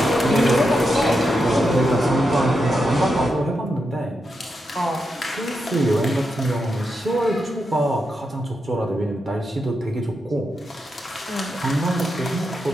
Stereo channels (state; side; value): normal; both; correlation 0.85